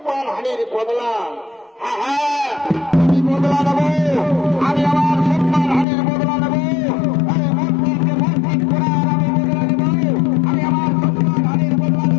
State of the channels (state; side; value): drops out; right; at 5.9 s